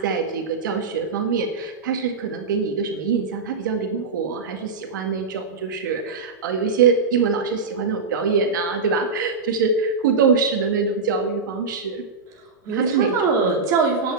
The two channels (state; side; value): quieter; left; 4.7 dB